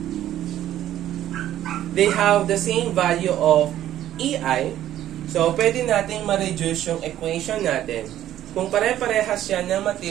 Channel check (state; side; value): quieter; left; 12.4 dB